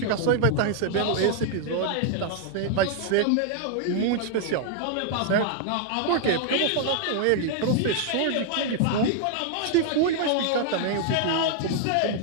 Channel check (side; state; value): both; different; correlation 0.00